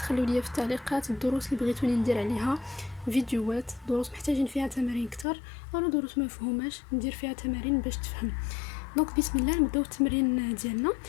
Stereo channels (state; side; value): drops out; right; at 5.2 s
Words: لي في التعليقات الدروس اللي بغيتوني ندير عليها فيديوهات، دروس محتاجين فيها تمارين اكثر او دروس ما مفهوماش ندير فيها تمارين باش تفهم. دونك بسم الله نبداو التمرين ديالنا.